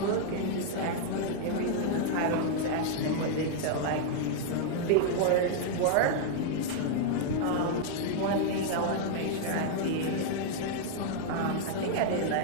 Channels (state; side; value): different; both; correlation -0.01